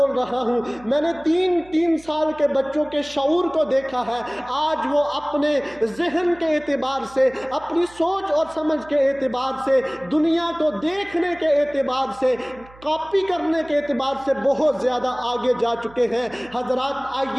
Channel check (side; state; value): right; noise; hum, 23 dB below the sound